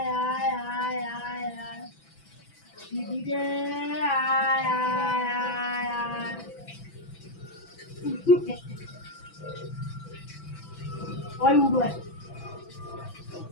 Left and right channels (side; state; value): right; late; 6.0 ms